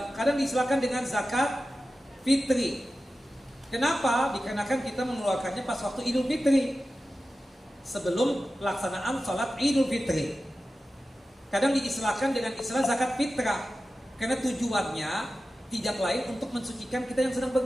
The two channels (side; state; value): both; normal; correlation 0.94